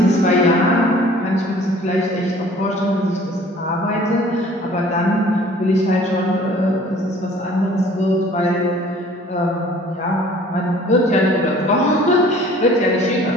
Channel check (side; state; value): both; normal; correlation 0.51